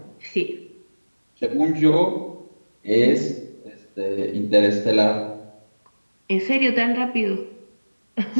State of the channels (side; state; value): both; inverted; correlation -1.00